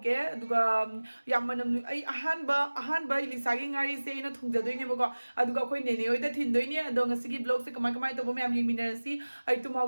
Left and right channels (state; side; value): inverted; both; correlation -1.00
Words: अदुगा यामनम आई अहानबा इलिसा गी ngali से इन थोंगदोइने बको अदुगा कोइ नेने ओइदा थिनदोइने अदो ngasi की ब्लॉग से कमाय कमाय तबो म्याम यिमिनरसी आई